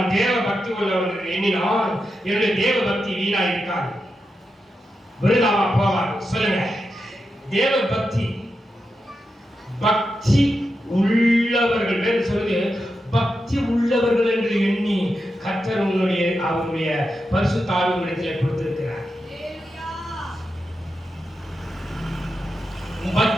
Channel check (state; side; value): normal; both; correlation 0.88